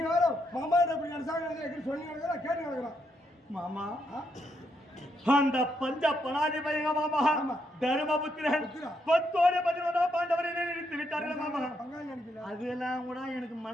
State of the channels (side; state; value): both; normal; correlation 0.78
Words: வேற மாமா அப்படி நினைச்சாங்க சொல்லி கேட்டு நடக்கிறான். மாமா அந்த பஞ்ச பணாதி பையங்க மாமா தர்மபுத்திரன் 10ஓட 11 பாண்டவரை நிறுத்தி விட்டார்கள் மாமா. அதெல்லாம் கூட எனக்கு